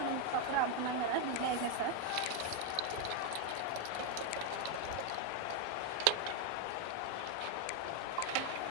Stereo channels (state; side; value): different; both; correlation 0.01